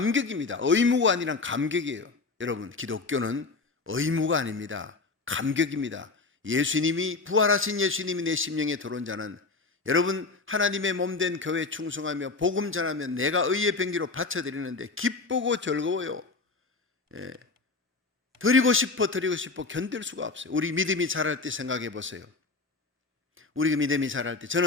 의무가 아니라 감격이에요. 여러분 기독교는 의무가 아닙니다. 감격입니다. 예수님이 부활하신 예수님이 내 심령에 들어온 자는 여러분 하나님의 몸된 교회에 충성하며 복음 전하면 내가 의의 병기로 바쳐드리는데 기쁘고 즐거워요. 드리고 싶어 견딜 수가 없어요. 우리 믿음이 자랄 때 생각해 보세요. 우리 믿음이 자랄 때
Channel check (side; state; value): right; quieter; 3.9 dB